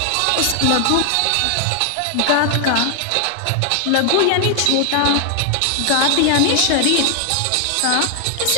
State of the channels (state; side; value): different; both; correlation 0.00